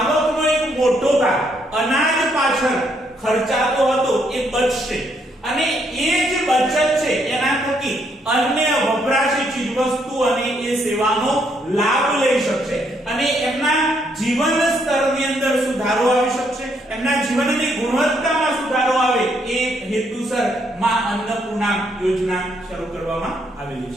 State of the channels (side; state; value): both; normal; correlation 0.73